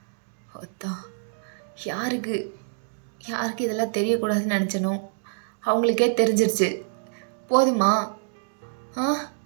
யாருக்கு இதெல்லாம் தெரியக்கூடாதுன்னு நினச்சனோ அவங்களுக்கே தெரிஞ்சிருச்சு. போதுமா?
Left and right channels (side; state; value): left; silent; digital silence